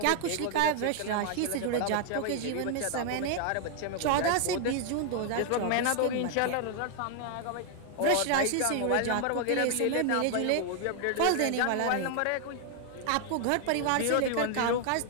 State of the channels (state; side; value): different; both; correlation 0.00